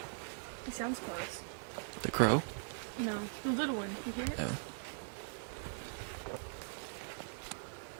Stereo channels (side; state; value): left; silent; digital silence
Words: He sounds close. The crow? No, the little one. You hear it? Oh.